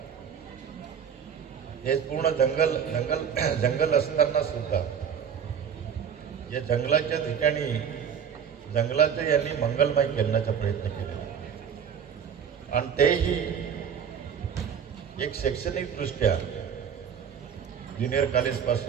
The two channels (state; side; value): quieter; left; 7.7 dB